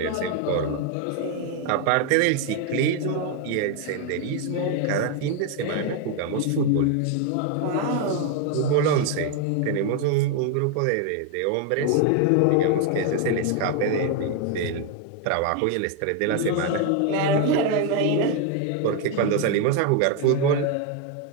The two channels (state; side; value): different; both; correlation 0.01